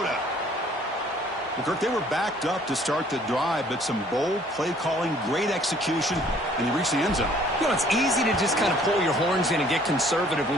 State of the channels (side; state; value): both; normal; correlation 0.58